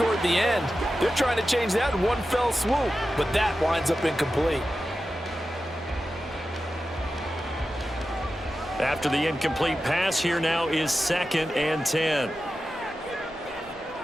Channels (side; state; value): both; normal; correlation 0.92